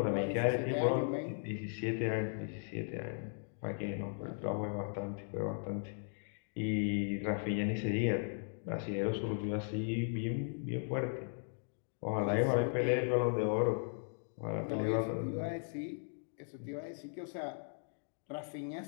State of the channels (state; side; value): silent; right; digital silence